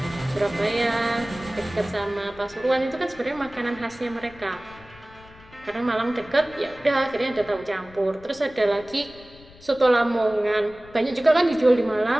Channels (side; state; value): left; noise; rumble, 23 dB below the sound